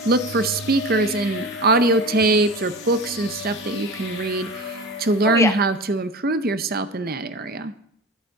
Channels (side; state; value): both; normal; correlation 0.32